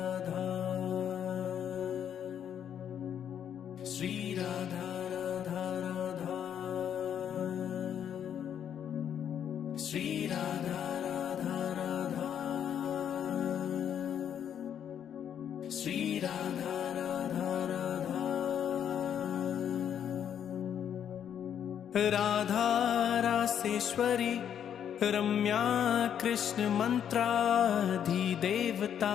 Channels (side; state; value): right; quieter; 9.1 dB